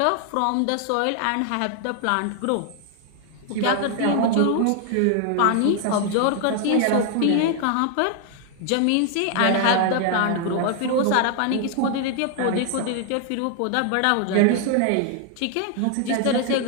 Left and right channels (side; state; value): both; different; correlation 0.00